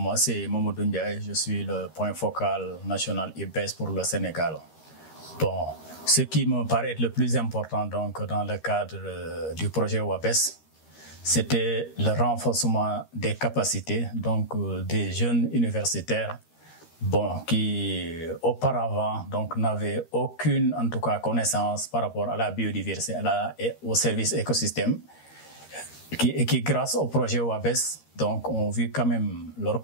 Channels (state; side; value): late; right; 13 ms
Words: c'est Mamadou Ndiaye. Je suis le point focal national IBES pour le Sénégal. Bon, ce qui me paraît être le plus important donc, dans le cadre du projet WABES, c'était le renforcement des capacités donc, des jeunes universitaires qui auparavant n'avaient aucune en tout cas, connaissance par rapport à la biodiversité et au service écosystème. Qui grâce au projet WABES, donc, ont vu quand même leurs